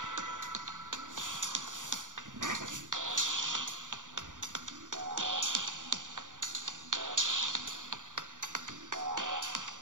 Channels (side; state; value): left; late; 0.87 ms